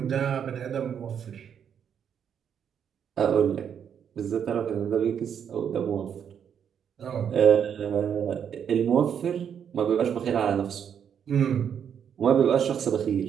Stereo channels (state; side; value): quieter; left; 8.2 dB